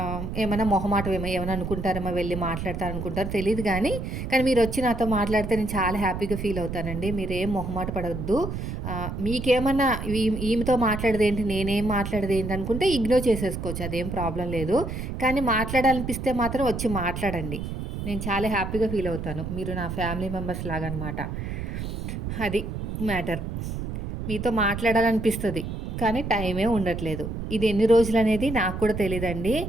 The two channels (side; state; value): right; noise; rumble, 5 dB below the sound